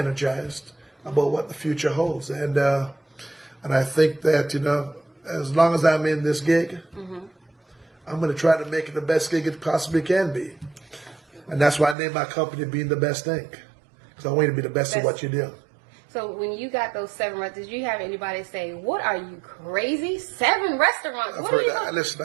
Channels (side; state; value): left; drops out; at 12.0 s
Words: about what the future holds. And I think that, as long as I'm in this gig, I'm going to try to make it the best gig it possibly can be. And that's why I named my company Being the Best Thing. Because I want you to be the best at what you do. So when you got those 7 restaurants, did you have anybody say, "What are you, crazy? 7 restaurants? I've heard that. Listen,